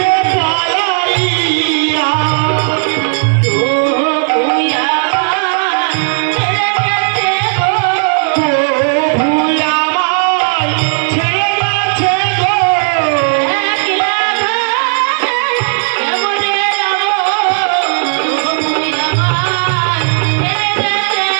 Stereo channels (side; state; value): left; silent; digital silence